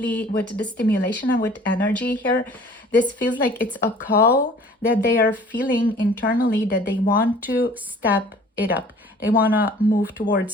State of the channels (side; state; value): both; normal; correlation 0.50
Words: with the stimulation and with energy here. This feels like it's a call that they are feeling internally, that they want to step it up. They want to move